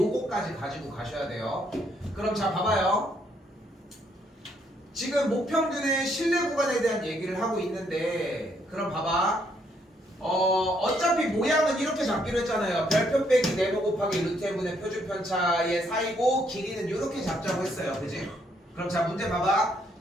가지고 가셔야 돼요. 그럼 자 봐봐요. 지금 모평균의 실내 구간에 대한 얘기를 하고 있는데 그럼 봐봐. 어차피 모양은 이렇게 잡기로 했잖아요. 별표 빼기 네모 곱하기 루트 n분의 표준 편차의 사이고 길이는 이렇게 잡자고 했어요. 그지? 그럼 자 문제 봐봐.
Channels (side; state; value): both; normal; correlation 0.71